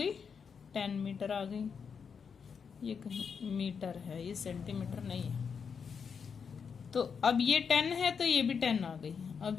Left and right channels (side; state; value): right; quieter; 6.3 dB